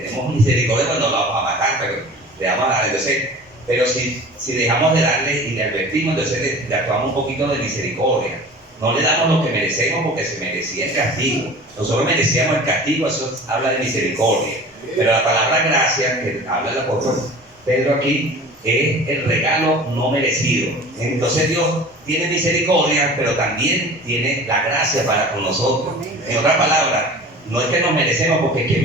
misericordia cuando lo vamos a matar, pero le vamos a dar. Entonces, pero si dejamos de darle y le advertimos, entonces le actuamos un poquito de misericordia. No le damos lo que merecemos porque se merecía el castigo. Nosotros merecíamos el castigo, eso habla de misericordia. Pero la palabra gracia, que habla el apóstol Pedro aquí, es el regalo no merecido. Entonces Dios tiene misericordia, pero también tiene la gracia para con nosotros. En otras palabras, no es que nos merecemos, porque ¿quién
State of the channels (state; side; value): normal; both; correlation 0.41